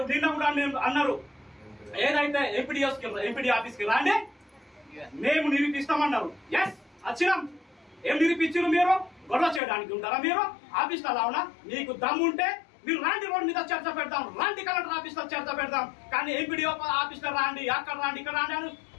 కూడా అన్నారు ఏదైతే ఎంపీడీ ఆఫీస్ కి రాండి మేము నిరూపిస్తామన్నారు. ఎస్ వచ్చినాం. ఏం నిరూపించారు? మీరు గొడవ చేయడానికి ఉంటారా? మీరు ఆఫీస్ లో రావునా? మీకు దమ్ము ఉంటే మీరు రాండి, రోడ్ మీద చర్చ పెడతాం, రాండి కలెక్టర్ ఆఫీస్ లో చర్చ పెడతాం. కానీ ఎంపీడీ ఆఫీస్ లో రాండి, అక్కడ రాండి, ఇక్కడ రాండి అని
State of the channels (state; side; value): drops out; right; at 9.6 s